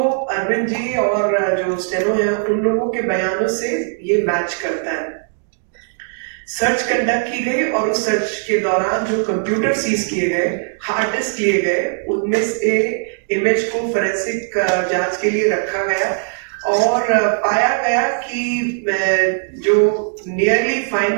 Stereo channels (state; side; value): silent; left; digital silence